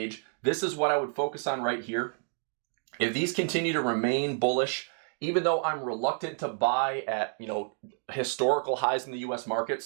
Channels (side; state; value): left; silent; 58 dB below the other